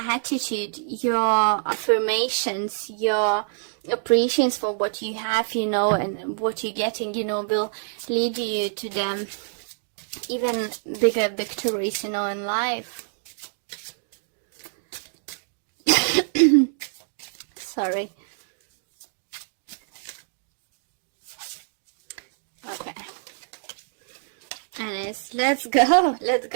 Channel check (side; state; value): left; silent; digital silence